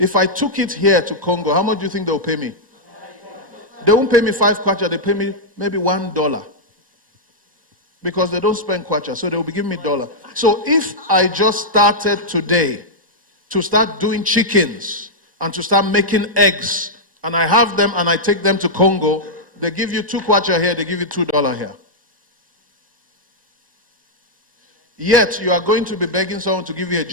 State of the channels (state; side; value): normal; both; correlation -0.07